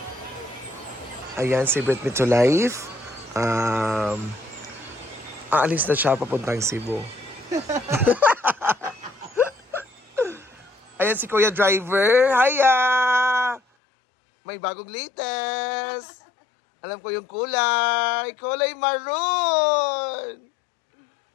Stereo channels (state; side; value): drops out; right; at 13.6 s